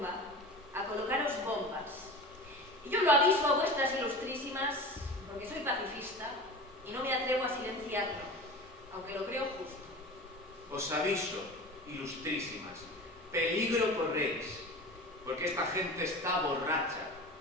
a colocaros bombas. Y yo lo aviso a vuestras ilustrísimas porque soy pacifista y no me atrevo a silenciarlo, aunque lo creo justo. Os aviso, ilustrísimas, peligro corréis, porque esta gente está borracha.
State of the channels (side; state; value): both; normal; correlation 0.34